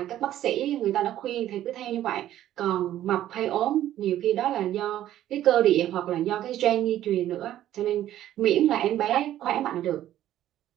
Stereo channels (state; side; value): quieter; left; 12.6 dB